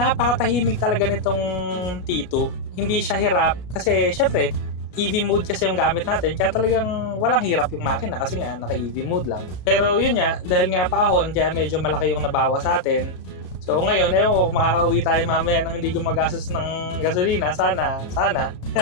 talaga nitong T2. Hindi siya hirap kasi syempre EV mode kasi yung gamit natin, kaya talagang walang hirap yung makina kasi nga naka-EV mode lang. Pero yun nga, dahil nga paahon, kaya medyo malaki yung nabawa sa atin. So ngayon, kung makakauwi tayo mamaya nang hindi gumagastos ng gasolina, sana.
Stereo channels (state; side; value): late; right; 33 ms